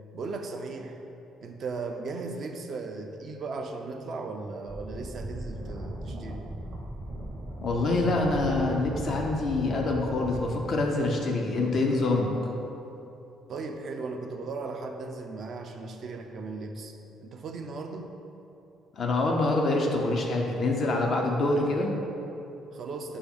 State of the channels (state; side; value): normal; both; correlation 0.69